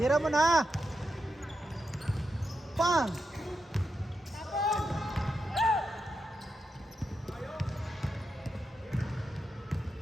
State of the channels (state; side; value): normal; both; correlation 0.86